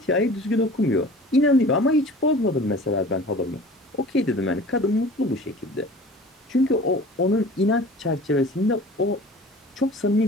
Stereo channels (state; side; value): normal; both; correlation 0.43